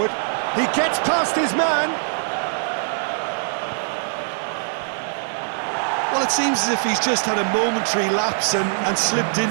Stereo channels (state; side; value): silent; left; digital silence